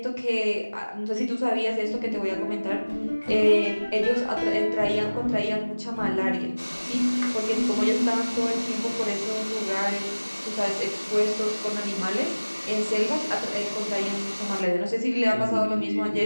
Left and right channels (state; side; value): inverted; both; correlation -1.00